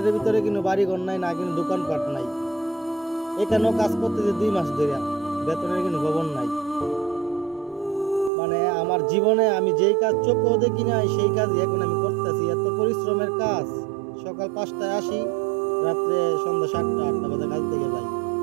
ভিতরে কোনো বাড়িঘর নাই, না কোনো দোকানপাট নাই। এখানেও কাজ করতেছে 2 মাস ধরে, বেতনের কোনো খবর নাই। মানে আমার জীবনে আমি যেই কাজ চোখেও দেখি নাই সেই কাজই এখন আমি করতেছি। এত পরিশ্রমের কাজ। সকাল 5টায় আসি, রাত্রে সন্ধ্যা 7টা-8টা বাজে কাজ থেকে যাই।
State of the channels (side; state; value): left; drops out; at 8.3 s